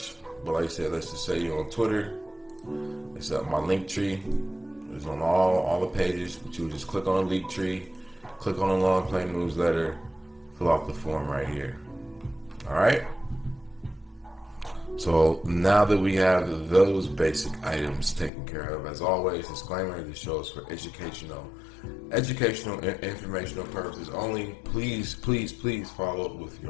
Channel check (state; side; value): drops out; right; at 18.3 s